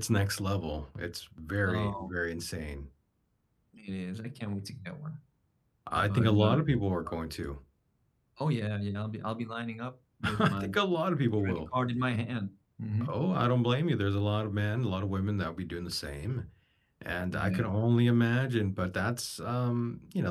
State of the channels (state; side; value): identical; both; correlation 1.00